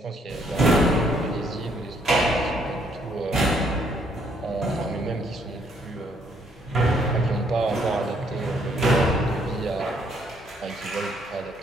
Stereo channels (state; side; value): normal; both; correlation 0.68